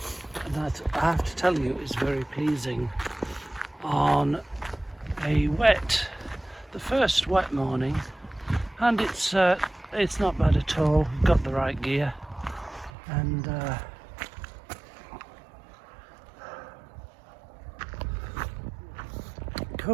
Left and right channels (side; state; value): left; drops out; at 12.9 s